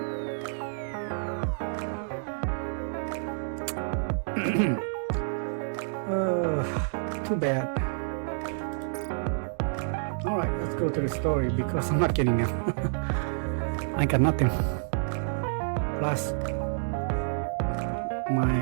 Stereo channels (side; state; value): left; silent; digital silence